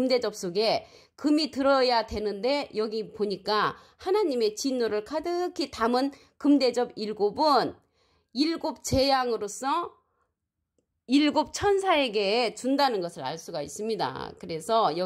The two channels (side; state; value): both; identical; correlation 1.00